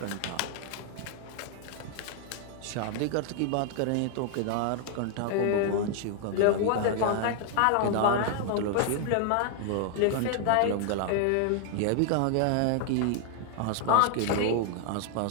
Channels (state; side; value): different; both; correlation 0.00